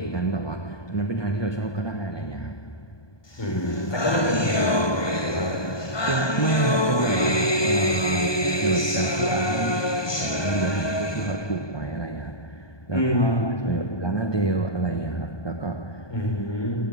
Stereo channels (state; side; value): late; right; 1.2 ms